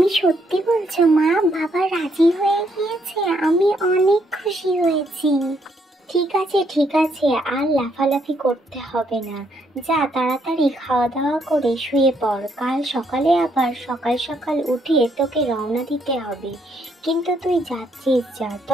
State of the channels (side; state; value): both; normal; correlation 0.73